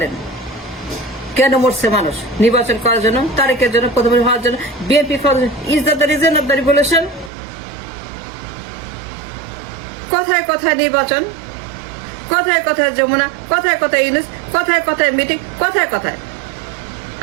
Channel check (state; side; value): drops out; left; at 7.3 s